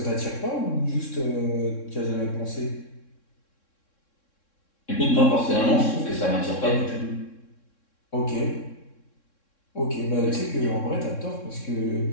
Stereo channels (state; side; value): late; right; 3.6 ms